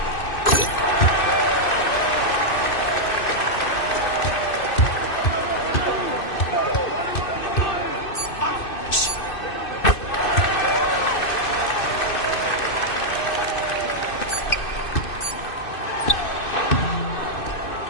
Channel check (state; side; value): late; right; 2.6 ms